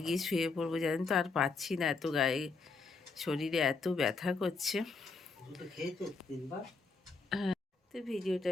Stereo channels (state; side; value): quieter; right; 4.2 dB